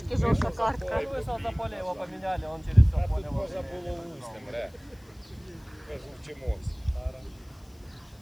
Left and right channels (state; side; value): noise; left; hiss, 30 dB below the sound